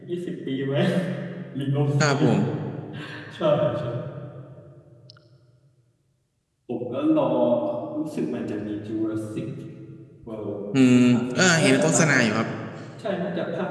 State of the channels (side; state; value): both; identical; correlation 1.00